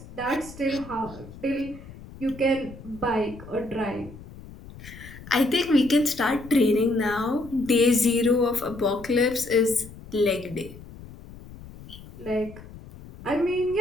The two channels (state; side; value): noise; left; rumble, 17 dB below the sound